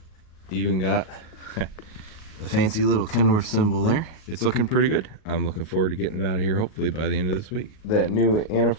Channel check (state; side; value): late; right; 38 ms